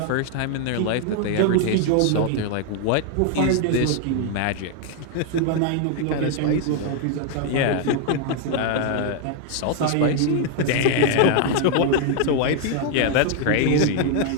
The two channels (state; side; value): different; both; correlation 0.00